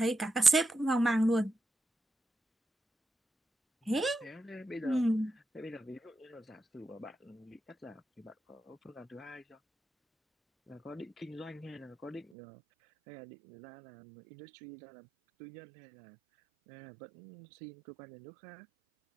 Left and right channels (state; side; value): drops out; left; at 12.2 s